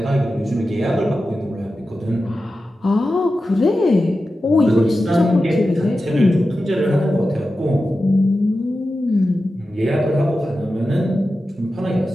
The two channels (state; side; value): normal; both; correlation 0.92